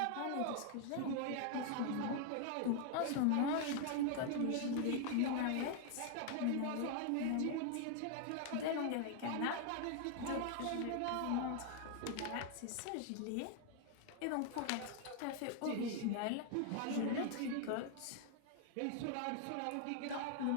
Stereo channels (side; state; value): both; different; correlation 0.00